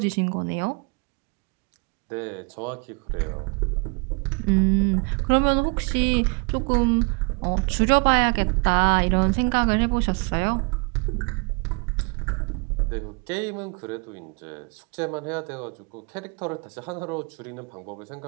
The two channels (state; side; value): quieter; left; 33.3 dB